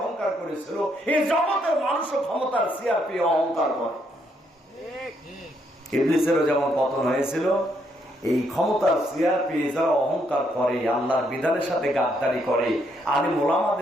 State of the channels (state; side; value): normal; both; correlation 0.74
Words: করেছিল, এই জগতের মানুষও ক্ষমতার চেয়ার পেয়ে অহংকার করে। ইবলিসেরও যেমন পতন হয়েছিল, এই ক্ষমতার চেয়ার পেয়ে যারা অহংকার করে, আল্লাহর বিধানের সাথে গাদ্দারি করে, আলিম